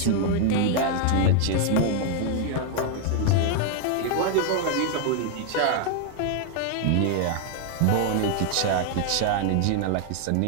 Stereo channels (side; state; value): both; different; correlation 0.00